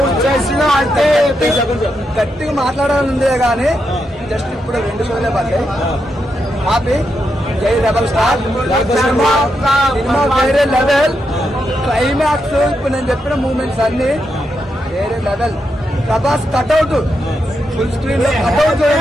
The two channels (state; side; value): normal; both; correlation 0.84